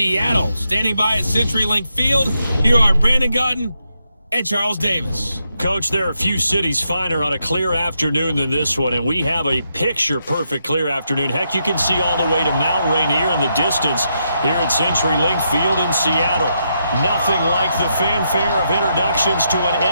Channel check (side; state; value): both; inverted; correlation -0.81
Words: Standing by at CenturyLink Field, here are Brandon Gaudin and Charles Davis. Coach, there are a few cities finer on a clear afternoon than this one, and we have a picture-perfect clear afternoon. Heck, you can see all the way to Mount Rainier in the distance here at CenturyLink Field in Seattle. Nothing like the fanfare of introductions to an